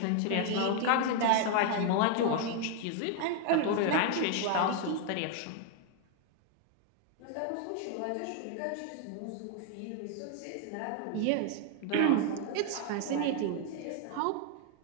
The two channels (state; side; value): different; both; correlation 0.00